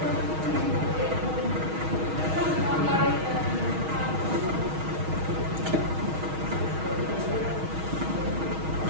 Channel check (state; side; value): late; left; 6.3 ms